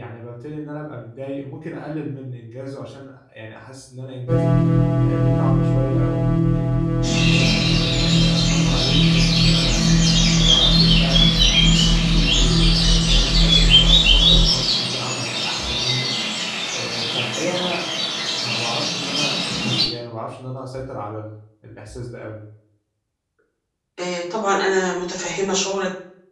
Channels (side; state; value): both; identical; correlation 1.00